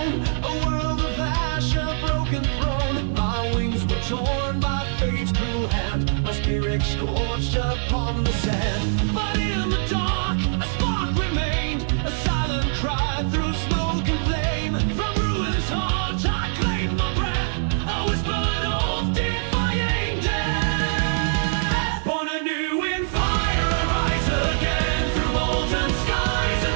a world of ash, a broken throne. My wings were torn by fate's cruel hand, my spirit scorched upon the sand. But in the dark, a spark remained, a silent cry through smoke and flame. From ruin's heart I claimed my breath, a whispered oath defying death. Born anew in fire, I rise again through molten skies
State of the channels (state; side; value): silent; left; digital silence